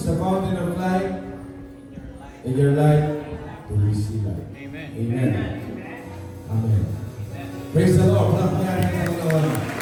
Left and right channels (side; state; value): both; identical; correlation 1.00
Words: the fountain of life, and your light to receive life. Amen. Amen. Amen. Praise the Lord.